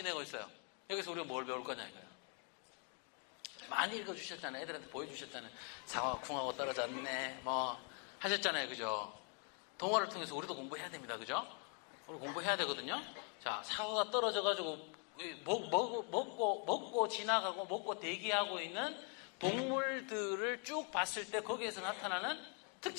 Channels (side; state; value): right; quieter; 39.1 dB